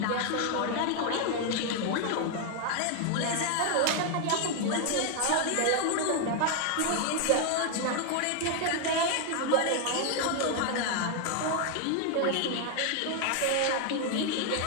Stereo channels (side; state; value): both; different; correlation 0.01